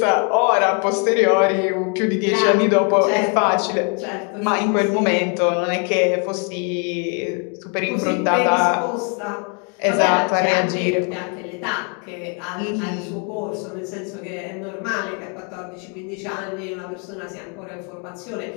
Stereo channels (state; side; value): quieter; right; 37.4 dB